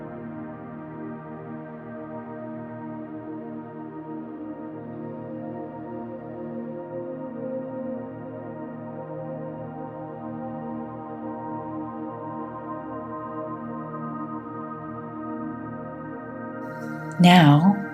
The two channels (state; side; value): identical; both; correlation 1.00